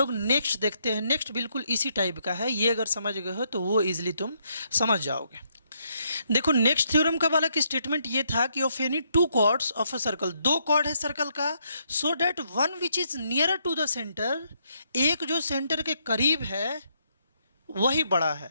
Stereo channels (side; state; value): both; inverted; correlation -0.75